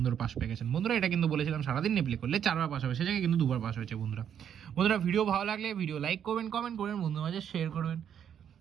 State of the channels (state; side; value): quieter; left; 8.9 dB